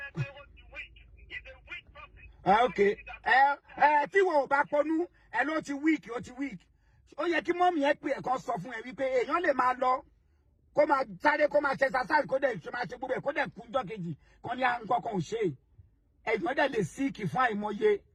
Tí wọn ò bá pọnú ẹ ló ti weak ó yẹ kí mọ́mì ẹ pé ẹ̀kan sọ fún ẹ wípé èèyàn lè máa lọ kó máa sáré kó máa ṣe exercise kó dẹ̀ ṣe máa ṣe gbogbo ẹ̀ kó dẹ̀ kú jọ́ kejì kan ní nǹkan kan ò ṣe ẹ̀yìn dẹ̀ lè síìkì fún àìmọye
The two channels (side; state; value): both; identical; correlation 1.00